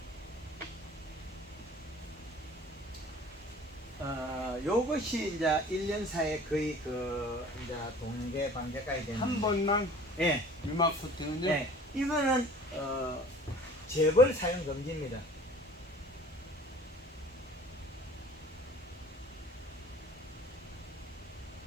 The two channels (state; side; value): normal; both; correlation 0.47